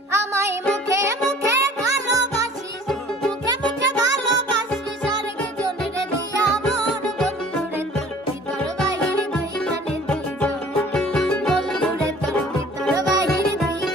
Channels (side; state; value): both; normal; correlation 0.49